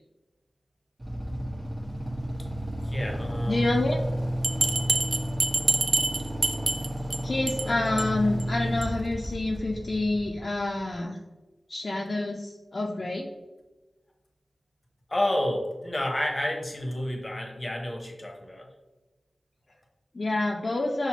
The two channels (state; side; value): normal; both; correlation 0.96